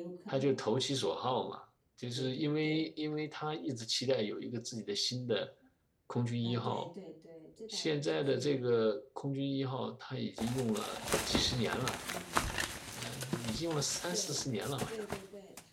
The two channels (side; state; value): both; identical; correlation 1.00